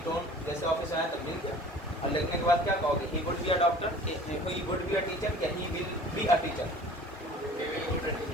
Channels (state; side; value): normal; both; correlation 0.46